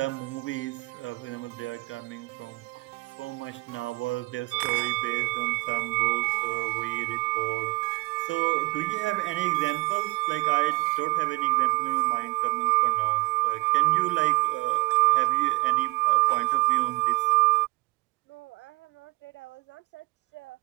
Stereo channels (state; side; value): quieter; left; 22.2 dB